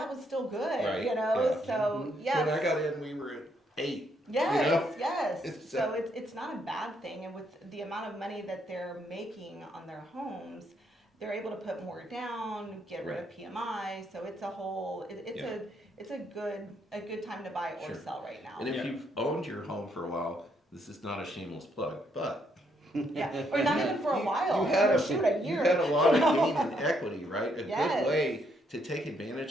was still good, Right, yeah. So, yes. When I got in, we were at 8. Yes, yes. It's, So it's not a bad thing, and with the amount of money that they're making on their homes, they're able to put more down, get rid of PMI. So it's a whole, it's a good time to buy or Sure. sell right now. And if Yeah. you've owned your home for a while, this is not a shameless plug, but Yeah, or not even for a while. You had a year. You had a lot of gain in equity, right? A Yes. good way to take advantage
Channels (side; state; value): both; normal; correlation 0.74